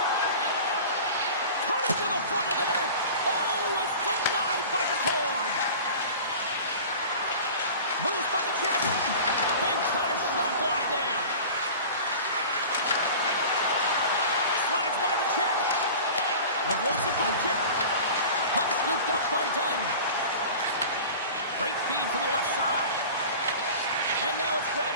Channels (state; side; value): inverted; both; correlation -0.38